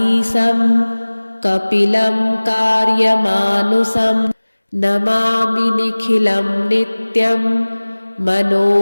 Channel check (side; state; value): both; inverted; correlation -1.00